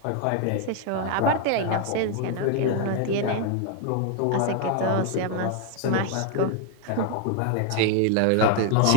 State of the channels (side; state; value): both; different; correlation 0.00